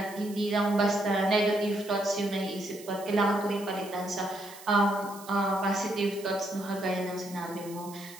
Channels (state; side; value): noise; right; hiss, 18 dB below the sound